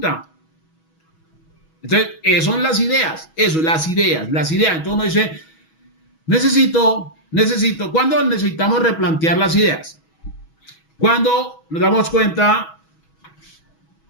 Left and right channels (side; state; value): right; late; 6.2 ms